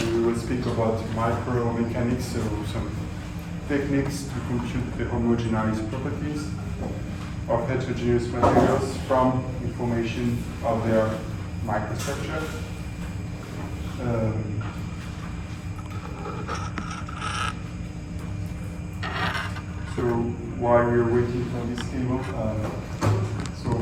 we will speak about micromechanics, so some techniques to compute the homogeneous properties of heterogeneous materials from information of their microstructure. So while we're waiting for this table, so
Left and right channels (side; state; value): both; identical; correlation 1.00